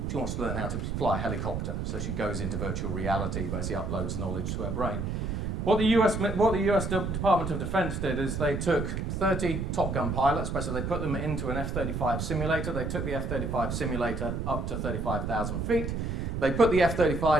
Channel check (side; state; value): right; noise; rumble, 2 dB below the sound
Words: wants to learn how to fly a helicopter, so she goes into virtual reality, basically uploads knowledge to her brain. What the US Department of Defense did is they took 30 Top Gun pilots, basically they put them into an F-35 simulator. They took the F-35 simulator up to 35,000 feet. They put the